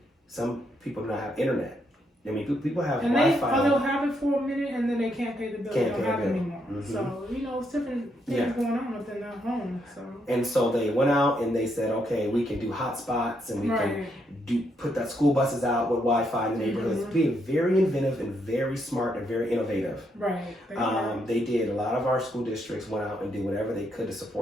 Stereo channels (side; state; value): both; normal; correlation 0.77